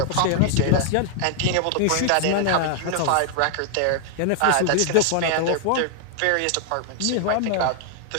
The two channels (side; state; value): both; different; correlation 0.00